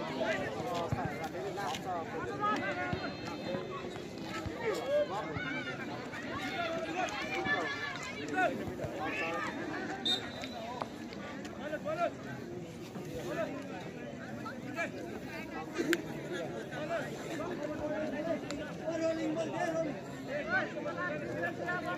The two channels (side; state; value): both; identical; correlation 1.00